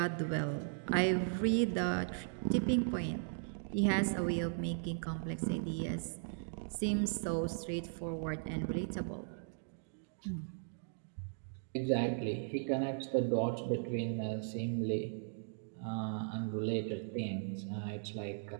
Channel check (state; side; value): silent; left; digital silence